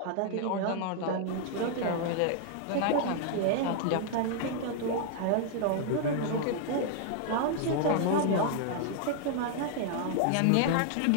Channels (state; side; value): different; both; correlation -0.01